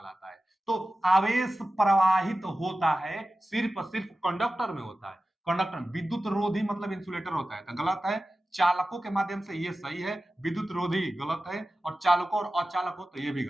है। तो आवेश प्रवाहित होता है सिर्फ कंडक्टर में होता है। कंडक्टर विद्युत रोधी मतलब इंसुलेटर होता है, तो गलत है। चालकों के माध्यम से ये सही है, विद्युत रोधी गलत है, और चालकों और अचालकों तो ये भी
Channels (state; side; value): normal; both; correlation 0.95